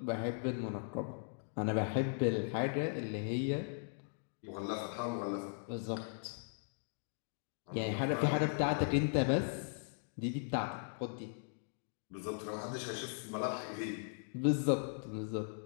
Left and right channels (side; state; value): right; silent; digital silence